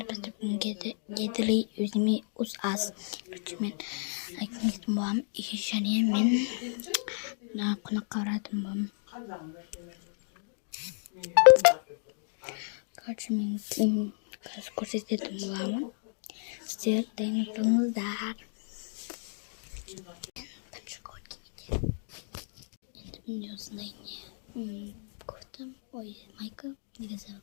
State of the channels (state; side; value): silent; right; 56 dB below the other